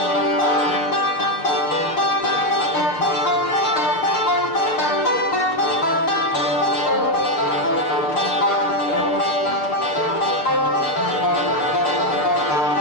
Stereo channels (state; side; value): late; right; 6.5 ms